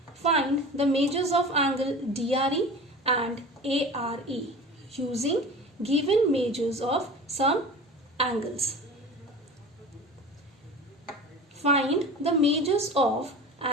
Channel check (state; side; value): normal; both; correlation 0.35